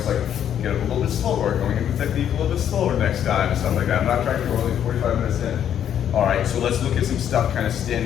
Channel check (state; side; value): quieter; right; 9.7 dB